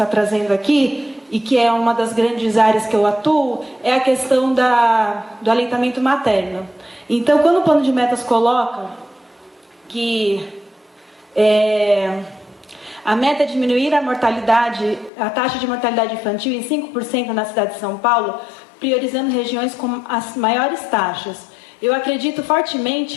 trazendo aqui, e que é uma das grandes áreas que eu atuo, é a questão do aleitamento materno. Então, quando o plano de metas coloca que a meta é diminuir a taxa de mortalidade infantil em 5% na cidade de São Paulo, priorizando regiões com as maiores taxas. Eu acredito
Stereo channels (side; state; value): right; drops out; at 15.1 s